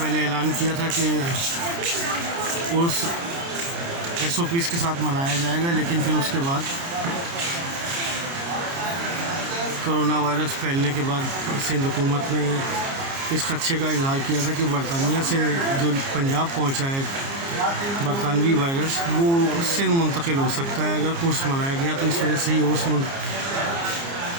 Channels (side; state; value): left; late; 29 ms